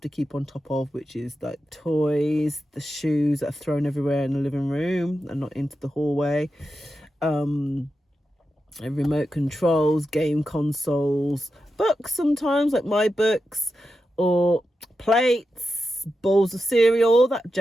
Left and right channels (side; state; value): both; normal; correlation 0.89